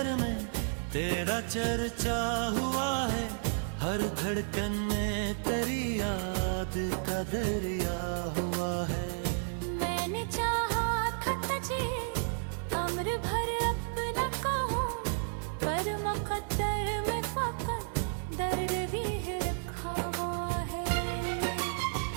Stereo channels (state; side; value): silent; left; 56 dB below the other